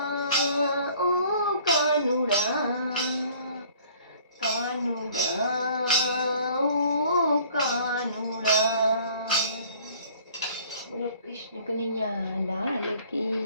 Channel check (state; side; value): inverted; both; correlation -0.54